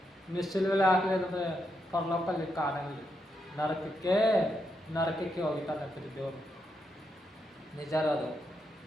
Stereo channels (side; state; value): both; normal; correlation 0.82